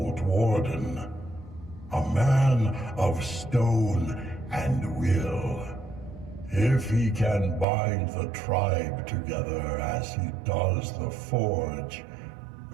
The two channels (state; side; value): drops out; left; at 7.7 s